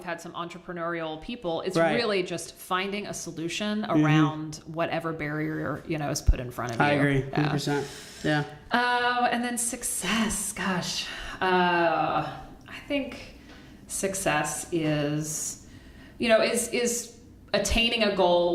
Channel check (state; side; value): identical; both; correlation 1.00